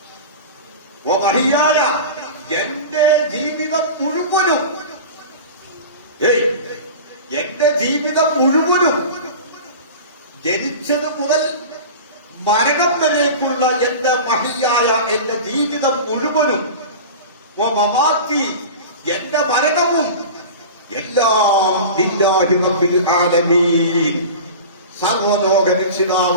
വഹിയായ എന്റെ ജീവിതം മുഴുവനും, എന്റെ ജീവിതം മുഴുവനും, ജനിച്ചത് മുതൽ മരണം വരേക്കുള്ള എന്റെ മഹിയായ എന്റെ ജീവിതം മുഴുവനും, മമാത്തി എന്റെ മരണവും, എല്ലാം ലില്ലാഹി റബ്ബിൽ ആലമീൻ, സർവലോക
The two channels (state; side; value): inverted; both; correlation -0.33